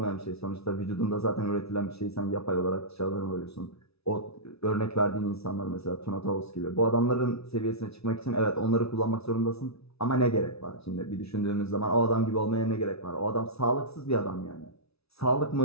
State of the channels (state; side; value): late; right; 0.78 ms